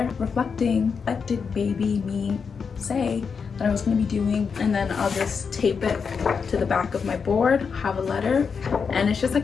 reflecting, what did baby me say that I was going to be doing? And then I'll just tape it to the back of my board, have a letter, and it's just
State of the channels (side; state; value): right; quieter; 5.8 dB